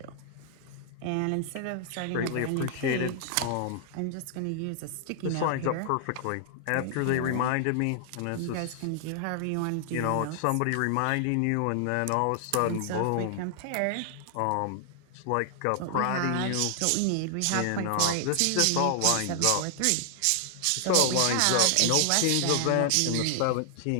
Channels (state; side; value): different; both; correlation -0.01